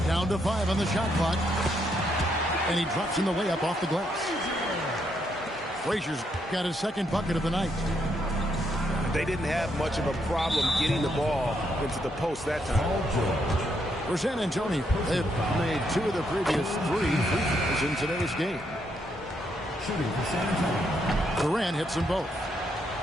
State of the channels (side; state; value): both; normal; correlation 0.76